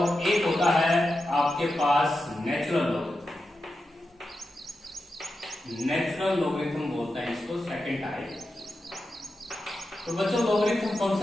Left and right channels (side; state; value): both; normal; correlation 0.90